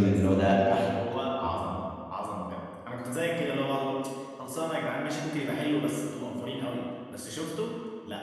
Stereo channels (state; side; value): identical; both; correlation 1.00